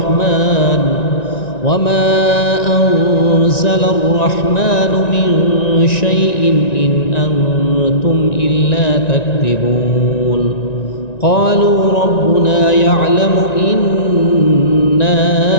أنزل الرحمن من شيء إن أنتم إلا تكذبون. قالوا ربنا يعلم إنا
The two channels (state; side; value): late; right; 1.9 ms